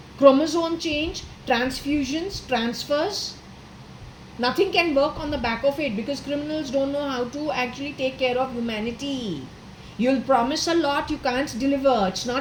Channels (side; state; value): both; identical; correlation 1.00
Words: chromosome change, transfusions, transfers. Nothing can work on the back of it because criminals don't know how to actually take care of humanity. You'll promise a lot, you can't deliver. It's